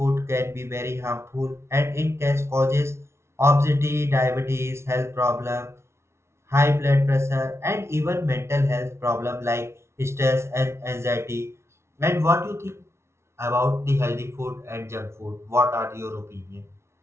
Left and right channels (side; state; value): left; late; 0.13 ms